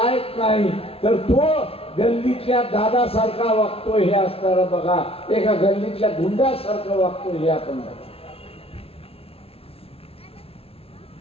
नाही, तर तो गल्लीतल्या दादासारखा वागतोय हे असताना बघा, एका गल्लीतल्या गुंडासारखं वागतोय हे आपण बघा.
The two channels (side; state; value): right; late; 0.28 ms